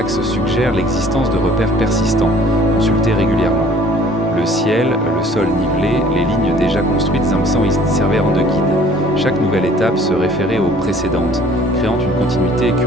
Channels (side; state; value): both; normal; correlation 0.54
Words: suggère l'existence de repères persistants, consultés régulièrement. Le ciel, le sol nivelé, les lignes déjà construites y servirent de guide. Chaque nouvelle étape se référait aux précédentes, créant une continuité